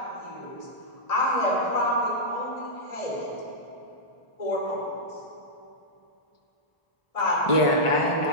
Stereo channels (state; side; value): late; right; 1.4 ms